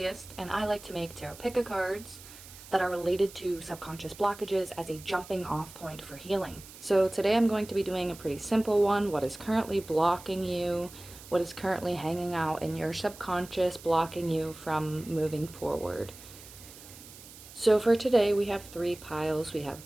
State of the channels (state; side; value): noise; right; hiss, 18 dB below the sound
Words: and I like to make tarot pick cards that are related to subconscious blockages as a jumping off point for healing. So today I'm going to be doing a pretty simple one. What is currently blocking you? What is currently hanging out in your subconscious, blocking you from moving forward? So for today we have 3 piles. We have